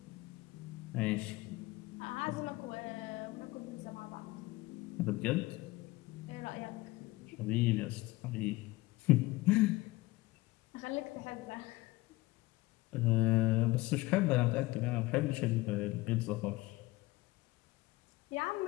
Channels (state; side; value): quieter; right; 20.3 dB